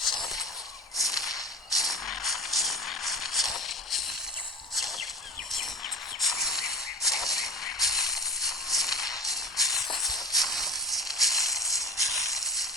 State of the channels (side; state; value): both; normal; correlation 0.32